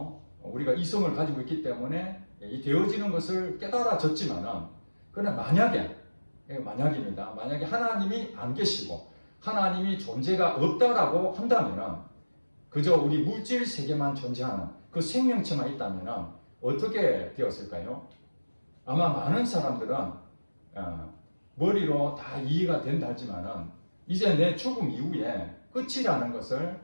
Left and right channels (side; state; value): both; inverted; correlation -1.00